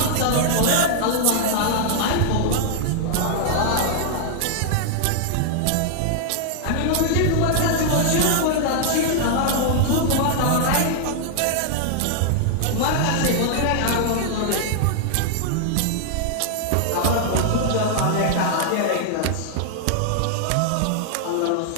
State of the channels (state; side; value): different; both; correlation -0.01